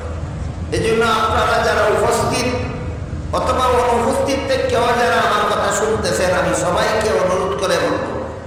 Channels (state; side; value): identical; both; correlation 1.00